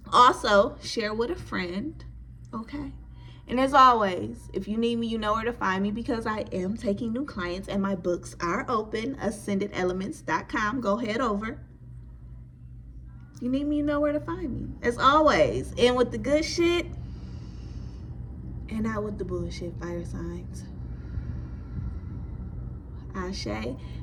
Also, share with a friend, okay? And as always, if you need me, you know where to find me, because I am taking new clients, and my books are open, ascendedelements.com. Go head over. You need me, you know where to find me. As always, in with the good shit, and out with the bullshit, fire signs. Ashe,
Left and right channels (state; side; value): identical; both; correlation 1.00